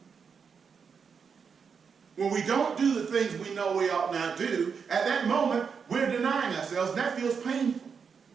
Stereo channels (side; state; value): left; quieter; 6.1 dB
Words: When we don't do the things we know we ought not do, at that moment, we're denying ourselves, and that feels painful.